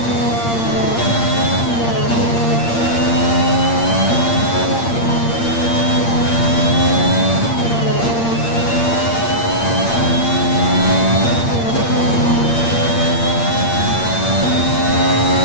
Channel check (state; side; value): late; right; 8.7 ms